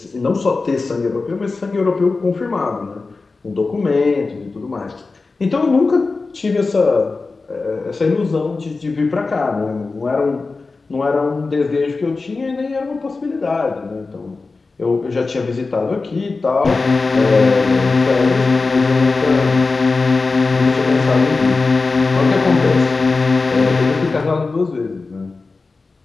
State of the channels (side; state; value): right; quieter; 3.9 dB